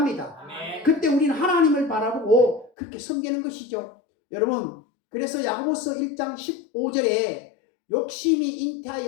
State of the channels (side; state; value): right; drops out; at 2.7 s